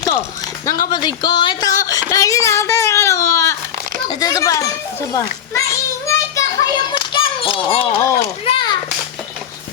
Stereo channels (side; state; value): right; quieter; 9.2 dB